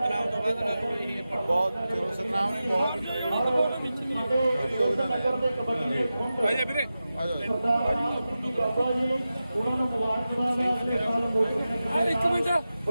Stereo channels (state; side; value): inverted; both; correlation -0.93